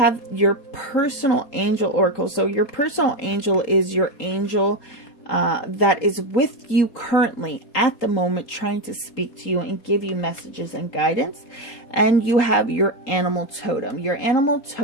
your personal angel oracle. So your personal angel is your angel that is with you currently at the moment, trying to speak to you and give you messages and guidance. And you have your animal totem. Your animal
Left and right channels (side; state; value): right; late; 3.8 ms